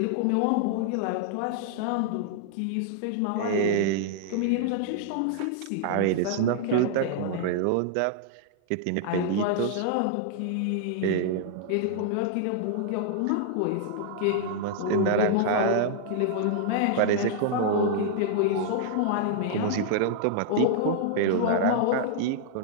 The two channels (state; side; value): different; both; correlation -0.01